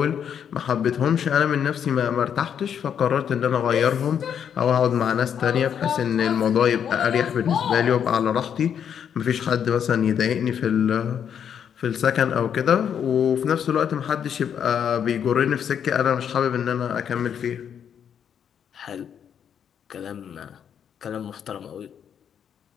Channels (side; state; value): right; quieter; 8.3 dB